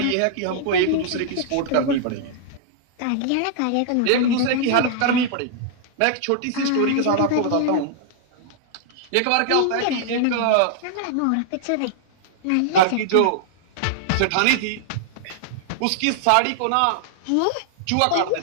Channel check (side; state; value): both; different; correlation -0.01